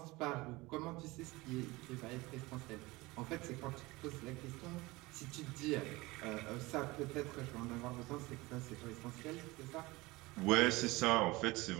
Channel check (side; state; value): left; quieter; 21.7 dB